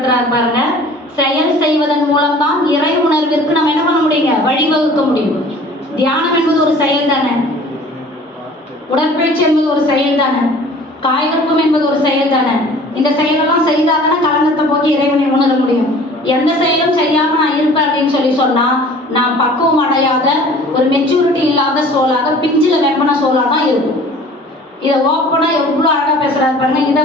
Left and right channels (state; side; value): normal; both; correlation 0.48